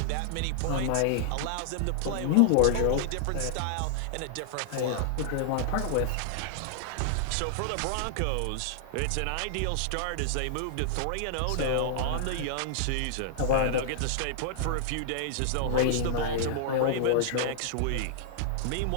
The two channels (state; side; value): different; both; correlation -0.01